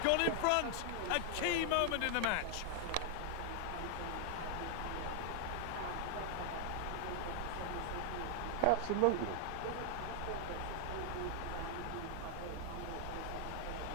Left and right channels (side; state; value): both; different; correlation 0.00